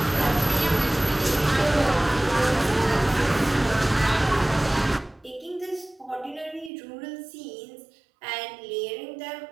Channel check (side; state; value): left; drops out; at 6.7 s